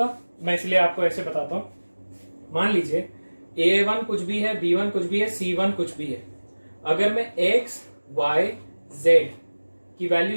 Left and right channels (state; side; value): inverted; both; correlation -1.00